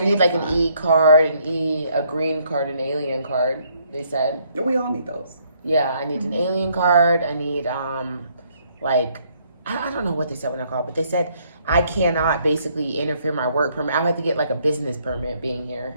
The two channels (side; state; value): both; inverted; correlation -0.68